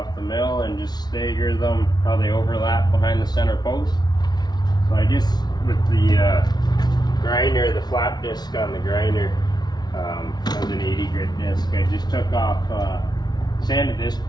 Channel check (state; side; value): late; right; 0.20 ms